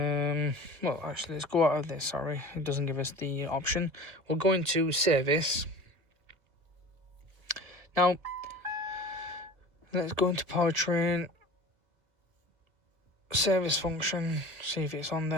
well, actually, let's go out of this. Sorry, it doesn't give us the option. We'll go into service. Now, let's go into powertrain, service function, see if it's on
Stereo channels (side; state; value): left; late; 2.0 ms